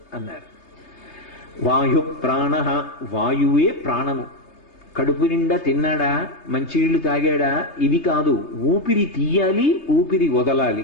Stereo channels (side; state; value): right; late; 3.3 ms